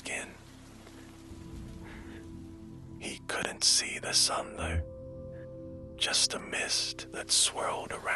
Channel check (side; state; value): both; identical; correlation 1.00